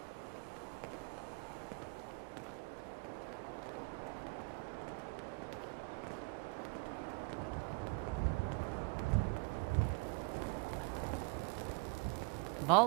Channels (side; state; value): left; quieter; 31.1 dB